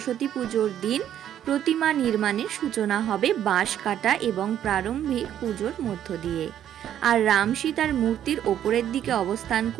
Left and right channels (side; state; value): left; quieter; 10.6 dB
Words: পুজোর দিন প্রতিমা নির্মাণের সূচনা হবে বাঁশ কাটা এবং প্রারম্ভিক পুজোর মধ্য দিয়ে। আর রাম সীতার মূর্তির ওপরের দিকে অবস্থান